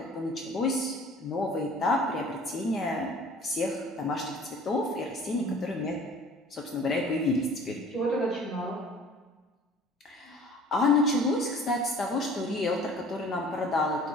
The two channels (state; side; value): normal; both; correlation 0.49